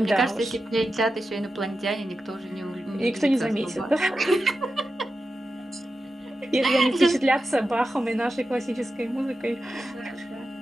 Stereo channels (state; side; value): normal; both; correlation 0.91